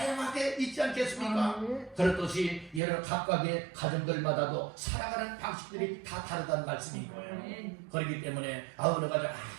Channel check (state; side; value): drops out; left; at 2.8 s